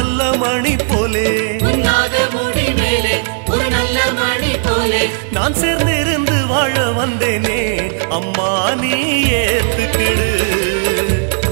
மணி போலே உன்னாக முடி மேலே ஒரு நல்ல மணி போலே நான் சேர்ந்து இருந்து வாழ வந்தேனே அம்மா நீ ஏத்துக்கிடு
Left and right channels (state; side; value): silent; left; 60 dB below the other